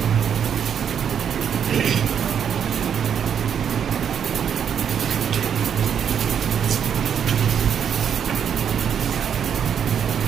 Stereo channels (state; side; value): quieter; left; 8.1 dB